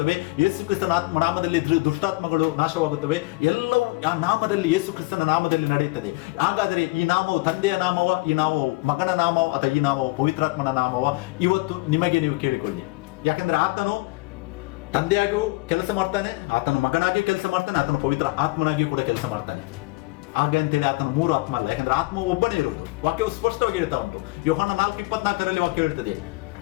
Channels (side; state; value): right; quieter; 23.5 dB